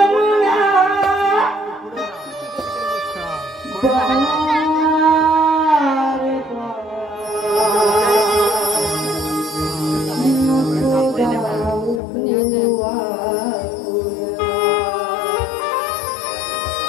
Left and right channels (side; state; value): right; drops out; at 12.0 s